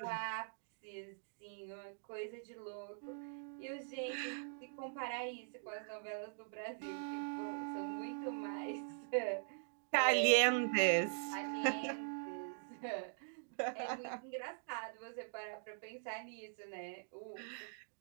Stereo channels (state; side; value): silent; left; digital silence